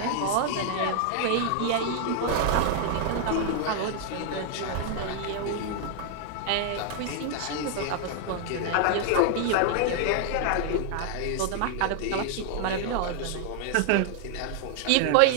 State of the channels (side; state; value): both; different; correlation 0.00